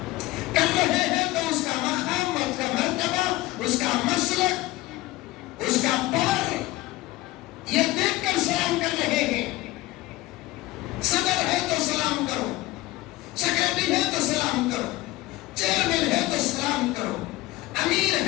کر رہے ہیں تو اس کا مقام، اس کا مرتبہ، اس کا مسلک، اس کا پاور یہ دیکھ کر سلام کر رہے ہیں. صدر ہے تو سلام کرو، سیکرٹری ہے تو سلام کرو، چیئرمین ہے تو سلام کرو، امیر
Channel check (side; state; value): right; quieter; 18.7 dB